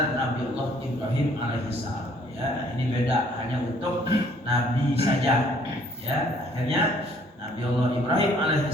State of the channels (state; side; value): normal; both; correlation 0.61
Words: Nabi Allah Ibrahim alaihissalam. Ya, ini beda hanya untuk Nabi saja. Ya, akhirnya Nabi Allah Ibrahim